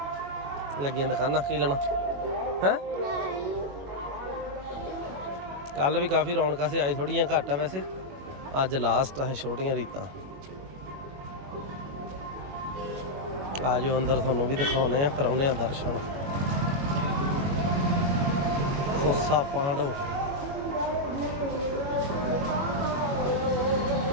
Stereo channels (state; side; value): late; left; 21 ms